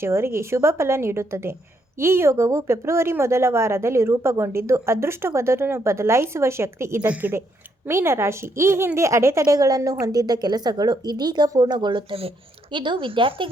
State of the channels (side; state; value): both; normal; correlation 0.75